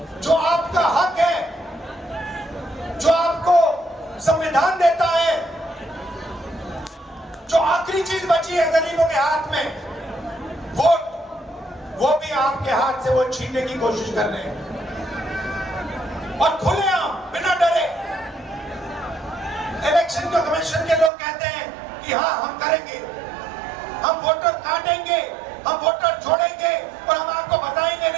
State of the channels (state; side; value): drops out; left; at 21.1 s